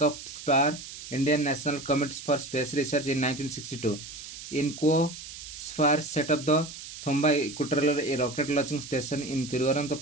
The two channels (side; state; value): right; noise; hiss, 12 dB below the sound